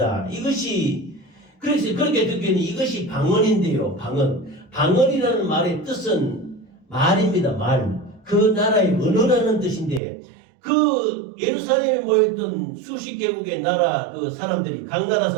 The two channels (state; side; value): drops out; left; at 10.0 s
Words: 이것이 그래서 그렇게 듣기에는 이것이 방언인데요. 방언이라는 말의 뜻은 말입니다. 말. 그 나라의 언어라는 뜻인데 그 예루살렘에 모였던 수십 개국의 나라 그 사람들이 각 나라